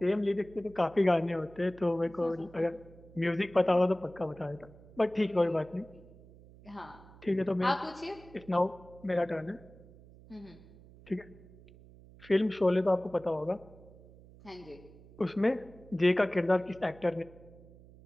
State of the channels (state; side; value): noise; right; hum, 22 dB below the sound